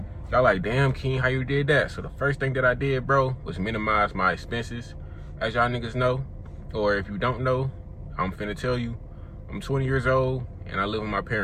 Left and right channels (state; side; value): identical; both; correlation 1.00